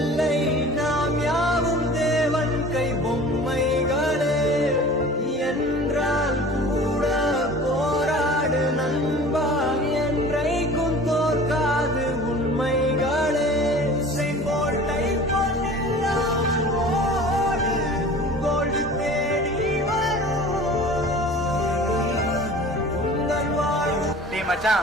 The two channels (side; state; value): both; normal; correlation 0.42